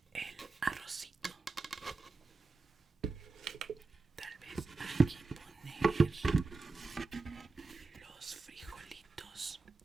el arrocito, tal vez aquí poner los frijolitos,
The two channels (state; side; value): quieter; left; 3.7 dB